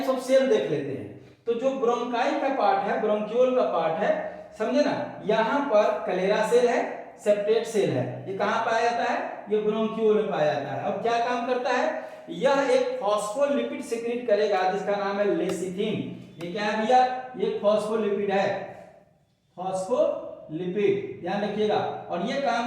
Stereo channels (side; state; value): both; identical; correlation 1.00